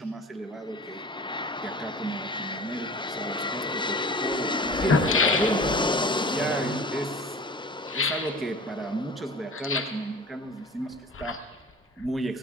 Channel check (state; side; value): normal; both; correlation 0.40